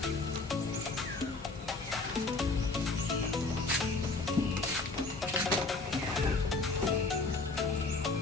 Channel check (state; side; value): quieter; right; 3.6 dB